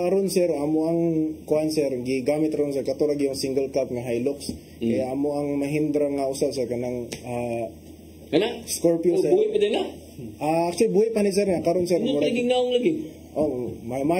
sir amo ang kuan sir gigamit ron sir katulad yung single cab nga Hilux kaya amo ang Mahindra nga usa sir kanang Scorpio sir. Buhay pa din na? Actually buhay pa ni sir nga karon sir. Ano lagi naong lagi? Oh,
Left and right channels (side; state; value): both; identical; correlation 1.00